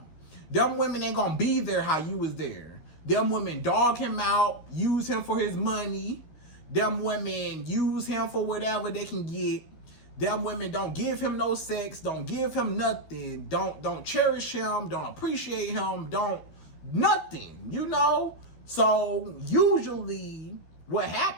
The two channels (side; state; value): right; late; 12 ms